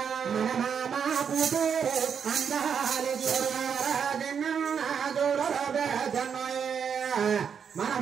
మన మామ కూతురు అందాలు చూడారా చిన్న చూడరా పెద్దన్న మన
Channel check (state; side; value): quieter; left; 7.1 dB